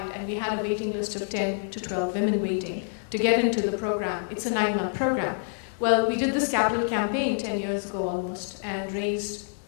and we had a waiting list of 10 to 12 women waiting to get into the program. It's a 9-month program. Well, we did this capital campaign 10 years ago almost and raised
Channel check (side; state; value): right; silent; digital silence